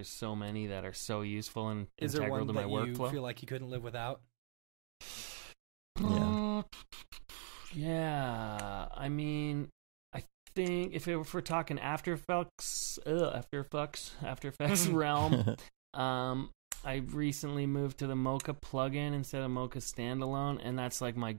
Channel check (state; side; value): silent; left; digital silence